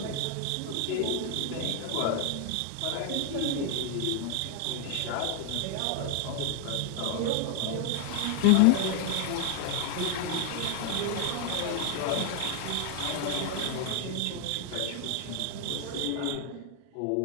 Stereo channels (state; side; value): different; both; correlation 0.00